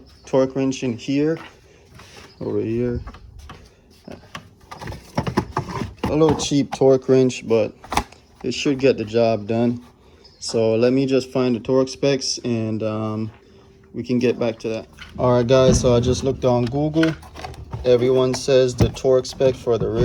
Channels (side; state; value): both; identical; correlation 1.00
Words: wrench in here, over here. A little cheap torque wrench, but it should get the job done. So let me just find the torque specs, and we can get back to that. All right, guys, so I just looked on Google. Everyone says the torque spec for the